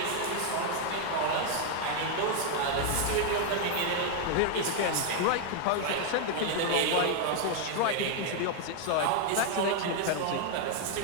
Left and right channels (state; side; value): different; both; correlation 0.00